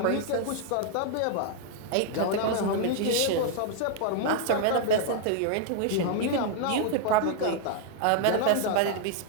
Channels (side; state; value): both; different; correlation 0.00